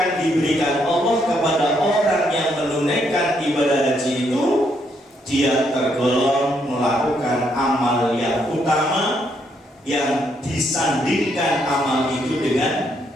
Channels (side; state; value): both; normal; correlation 0.74